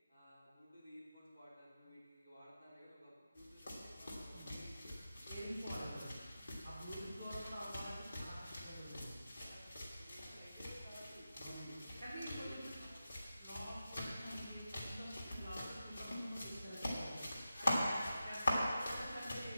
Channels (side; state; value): both; inverted; correlation -0.91